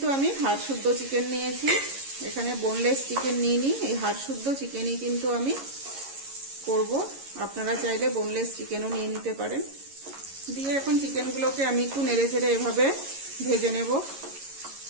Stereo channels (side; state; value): left; late; 11 ms